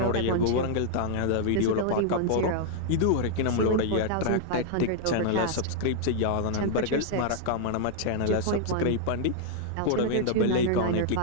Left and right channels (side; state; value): both; different; correlation -0.01